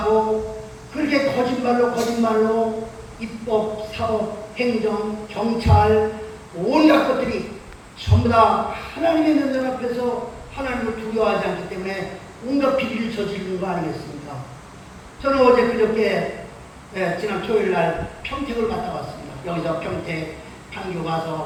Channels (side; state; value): both; identical; correlation 1.00